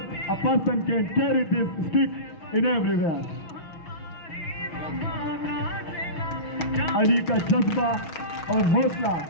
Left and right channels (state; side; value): late; right; 6.3 ms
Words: a person can carry this stick in everywhere. Ali का जज्बा और हौसला